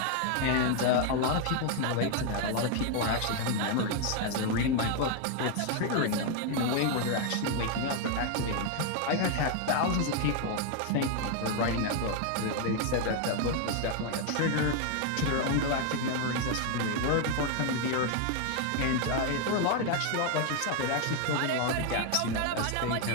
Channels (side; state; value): both; different; correlation 0.01